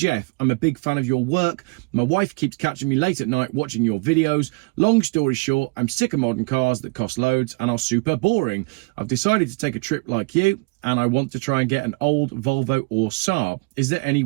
I'm a big fan of your work. My wife keeps catching me late at night watching your videos. Long story short, I'm sick of modern cars that cost loads and are super boring. I've decided to take a trip like you and I want to try and get an old Volvo or Saab. Is there any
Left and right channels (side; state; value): left; quieter; 28.9 dB